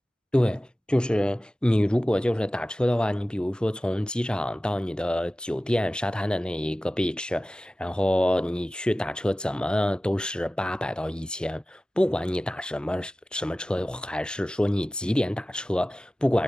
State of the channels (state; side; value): normal; both; correlation 0.96